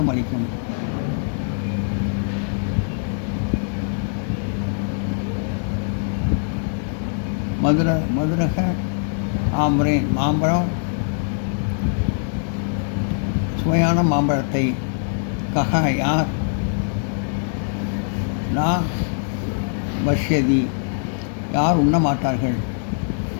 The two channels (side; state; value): right; silent; digital silence